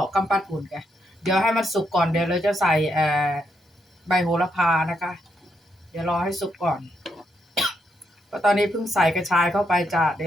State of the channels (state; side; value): normal; both; correlation 0.79